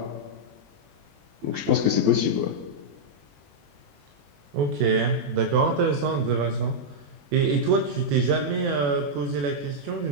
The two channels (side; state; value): left; late; 21 ms